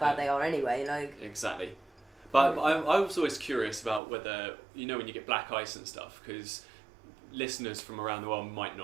they are anyway. Like exactly. But I was always curious about whether, you know, when you get black ice and stuff, because listeners from around the world might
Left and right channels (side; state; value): left; drops out; at 4.0 s